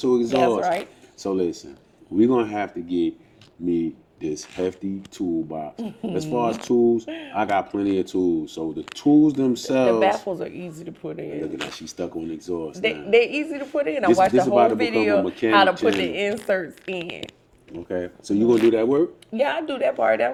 exhaust. That's right. So listen, we're gonna have to get me this hefty toolbox. As far as tools, I got plenty of tools. So the tools themselves. The baffles are easy to put in. Look at that, she's stuck on exhaust. They're easy to put in. I This- watched this the about whole to become a video mechanic how to put channel. the inserts in. Okay, so you gonna do that work? Yeah, I do that part.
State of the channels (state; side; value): identical; both; correlation 1.00